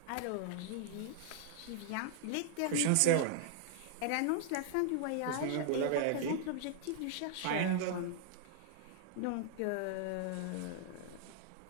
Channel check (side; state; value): both; different; correlation -0.01